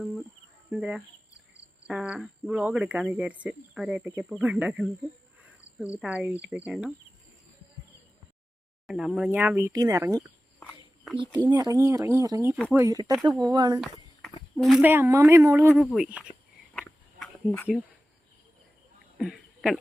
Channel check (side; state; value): both; normal; correlation 0.95